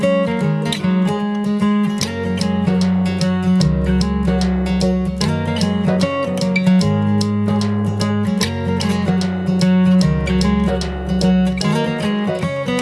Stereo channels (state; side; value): identical; both; correlation 1.00